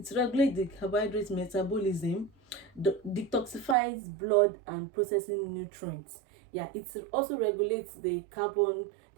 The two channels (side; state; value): left; drops out; at 3.8 s